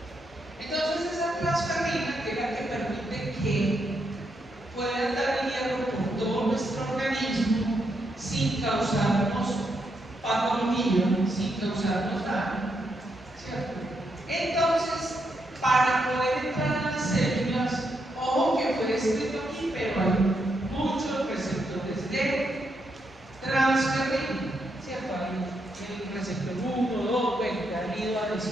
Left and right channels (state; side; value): normal; both; correlation 0.80